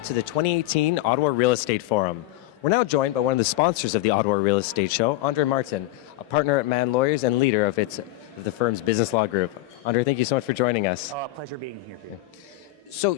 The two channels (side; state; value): right; quieter; 16.7 dB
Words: to the 2018 Ottawa Real Estate Forum. We're now joined by one of the sponsors of the Ottawa Real Estate Show, Andre Martin, a partner at Mann Lawyers and leader of the firm's business law group. Andre, thank you so much for joining us. Pleasure being here, Peter. So